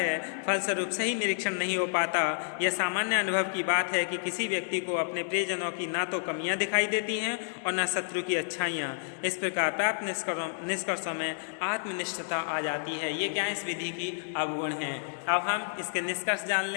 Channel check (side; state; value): right; silent; digital silence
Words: फलस्वरूप सही निरीक्षण नहीं हो पाता। यह सामान्य अनुभव की बात है कि किसी व्यक्ति को अपने प्रियजनों की ना तो कमियां दिखाई देती हैं और न शत्रु की अच्छाइयाँ। इस प्रकार प्राप्त निष्कर्षों में आत्मनिष्ठता आ जाती है। ये क्या इस विधि की अवगुण हैं। अब हम इसके निष्कर्ष जान